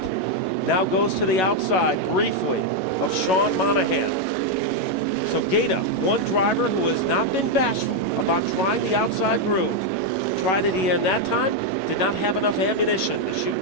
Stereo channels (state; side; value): late; right; 11 ms